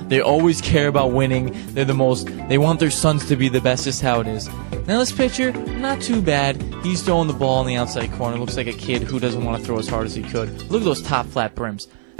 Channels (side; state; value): left; silent; 60 dB below the other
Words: they always care about winning. They want their sons to be the best. Just how it is. Now this pitcher, not too bad. He's throwing the ball in the outside corner. Looks like a kid who doesn't want to throw as hard as he could. Look at those top flat brims.